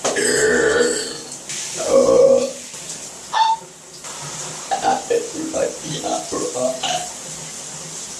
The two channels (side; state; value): both; identical; correlation 1.00